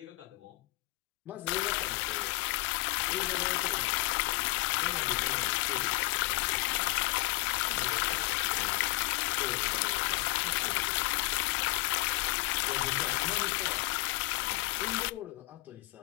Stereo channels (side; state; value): right; quieter; 20.4 dB